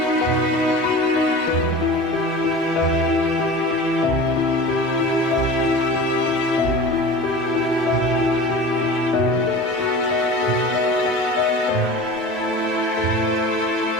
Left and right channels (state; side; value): normal; both; correlation 0.35